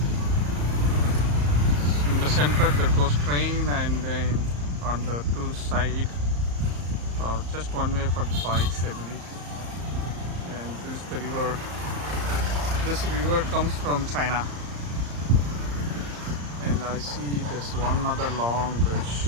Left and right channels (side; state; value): left; late; 34 ms